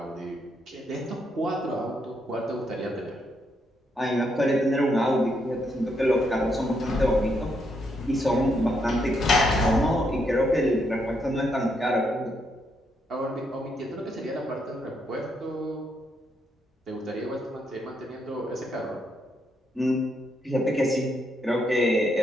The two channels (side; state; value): both; normal; correlation 0.77